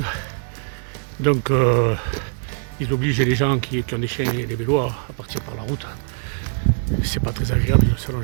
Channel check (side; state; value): left; silent; digital silence